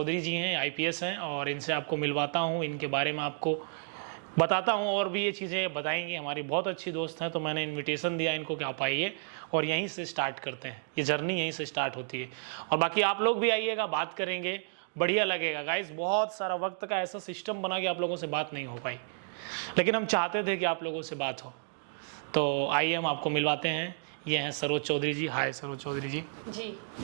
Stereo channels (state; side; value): silent; left; digital silence